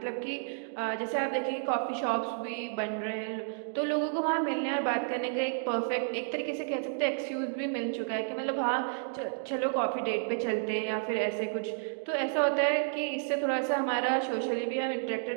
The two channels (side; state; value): left; silent; digital silence